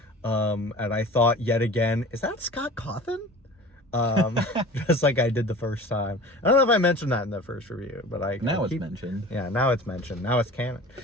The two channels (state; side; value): normal; both; correlation 0.40